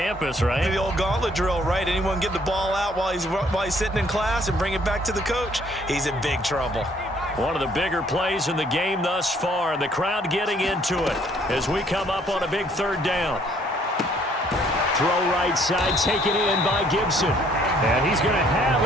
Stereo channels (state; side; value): normal; both; correlation 0.63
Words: right? The old gauntlet drill, right? Anyone get the ball out while he's sitting in class and bring it back to the coach, he's in big trouble. One of the bigger plays in the game thus far, and the crowd getting into it as we come up on a big 3rd down. Throw right side, taken in by Gibson. And he's going to have